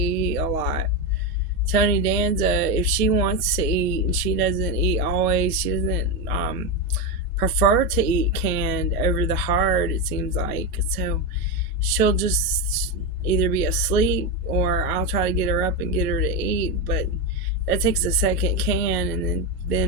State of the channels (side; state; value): both; normal; correlation 0.11